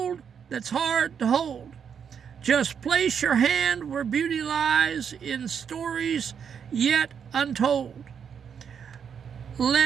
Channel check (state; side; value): quieter; left; 7.3 dB